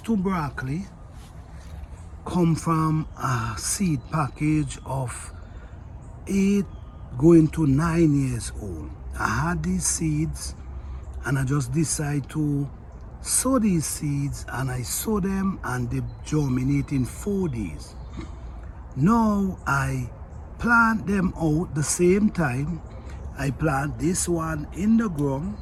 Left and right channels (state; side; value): identical; both; correlation 1.00